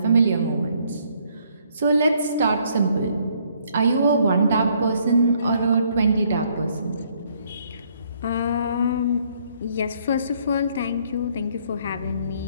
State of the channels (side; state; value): both; inverted; correlation -0.67